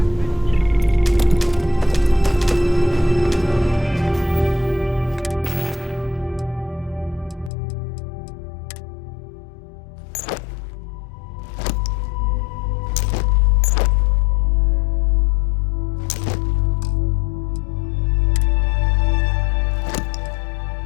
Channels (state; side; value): drops out; right; at 7.5 s